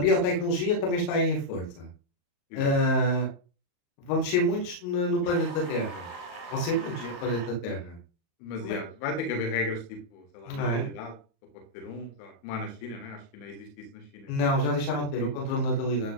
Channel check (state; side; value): late; right; 34 ms